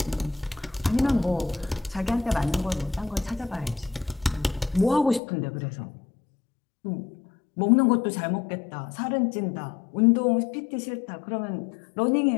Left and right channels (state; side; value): drops out; right; at 5.2 s